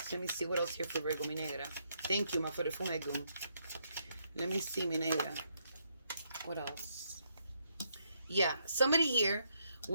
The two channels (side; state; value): both; inverted; correlation -0.76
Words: Let me see what else here for Virgo, mi negra. Thank you, ma forefumegum. Let me see, mi negra. What else? Yeah, somebody here